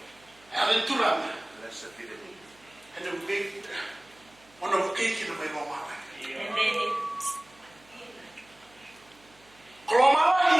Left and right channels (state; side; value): noise; right; hum, 29 dB below the sound